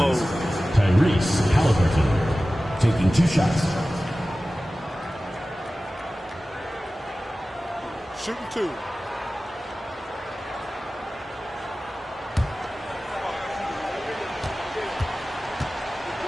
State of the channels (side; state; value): both; normal; correlation 0.96